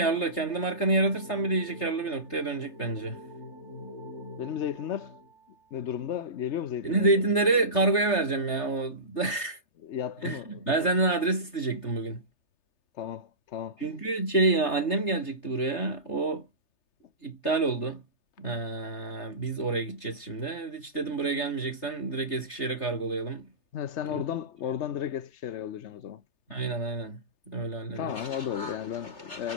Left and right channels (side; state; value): right; late; 3.3 ms